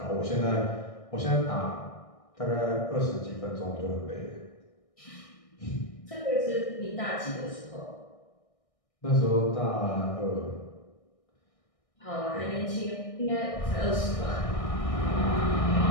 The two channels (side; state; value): right; late; 1.6 ms